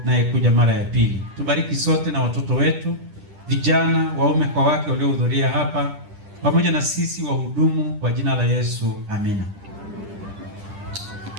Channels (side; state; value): left; late; 10 ms